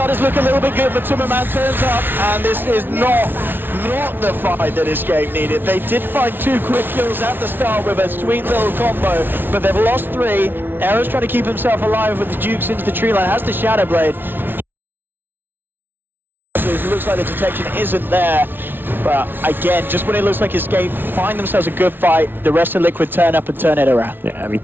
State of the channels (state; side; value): late; left; 0.099 ms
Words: look a little bit good, but MATUMBAMAN turns up, and this is not the fight that Escape needed. They did find 2 quick kills at the start with a sweet little combo, but they've lost 3. Era's trying to keep himself alive with the Dukes into the tree line, has the Shadowblade. It looks like the detection isn't there, but again, just when it looks like Escape find themselves a good fight, the rest of Liquid turn up and turn it around. Yeah, I mean,